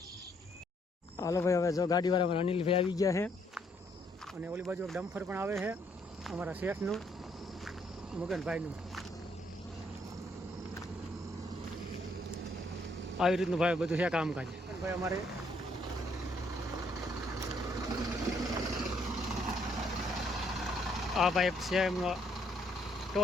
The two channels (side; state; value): both; normal; correlation 0.69